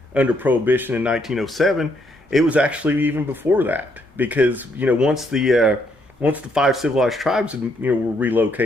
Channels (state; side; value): normal; both; correlation 0.73